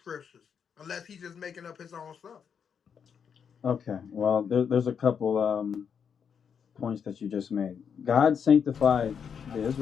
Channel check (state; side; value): quieter; right; 7.1 dB